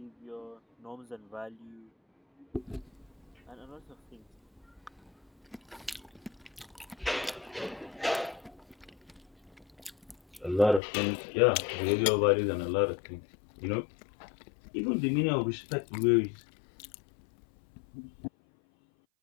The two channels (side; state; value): right; drops out; at 10.8 s